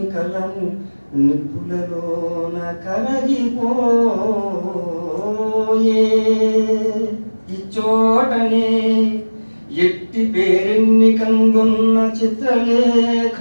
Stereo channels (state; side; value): inverted; both; correlation -1.00